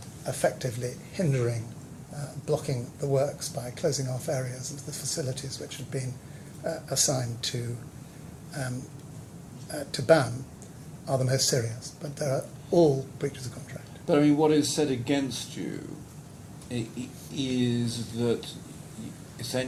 effectively hindering, blocking the works by closing off areas of the facilities which had been assigned to BAM are the most serious, but there are all breaches of contract. But I mean, what is said against you is that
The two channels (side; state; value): both; identical; correlation 1.00